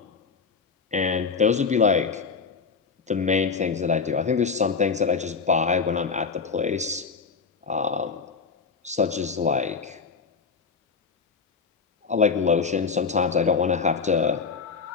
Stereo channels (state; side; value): quieter; right; 5.2 dB